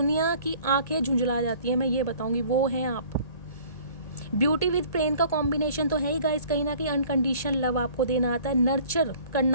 की आंखें झुंझला जाती हैं, मैं ये बताऊंगी, वो हैं आप। ब्यूटी विद पेन का कॉम्बिनेशन तो है ही गाइस। कहीं ना कहीं अनकंडीशनल लव आपको देना आता है, नर्चर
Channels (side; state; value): right; late; 1.8 ms